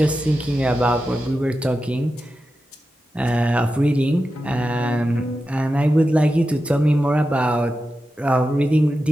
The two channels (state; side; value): normal; both; correlation 0.91